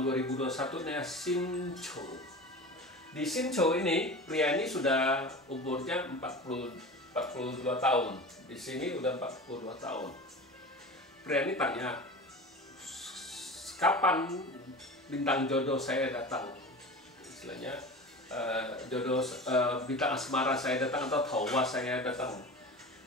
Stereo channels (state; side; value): normal; both; correlation 0.33